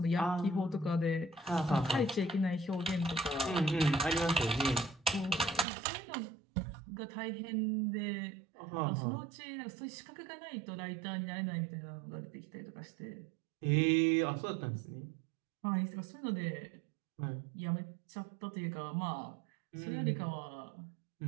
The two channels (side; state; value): left; drops out; at 5.7 s